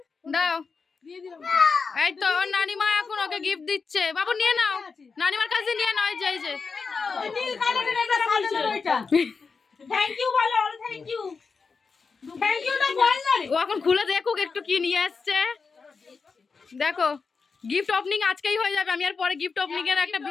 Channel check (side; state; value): right; quieter; 4.9 dB